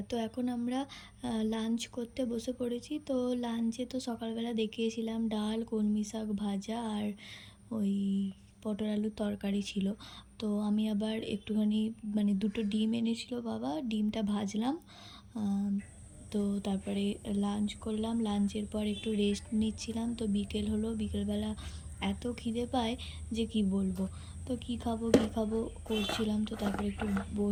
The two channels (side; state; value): both; identical; correlation 1.00